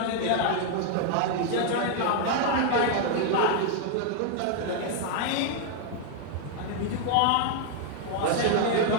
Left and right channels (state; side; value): different; both; correlation 0.00